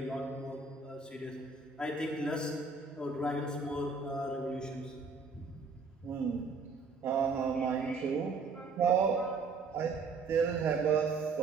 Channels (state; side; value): quieter; left; 4.5 dB